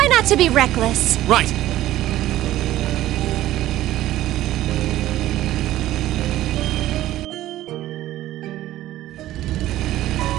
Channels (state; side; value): quieter; left; 14.6 dB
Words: not to be reckless. Right.